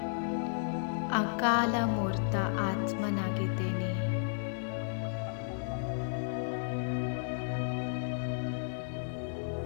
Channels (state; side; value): silent; right; digital silence